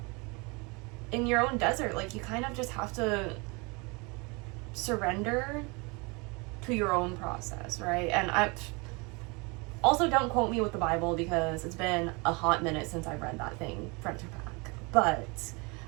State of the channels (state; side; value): quieter; left; 29.0 dB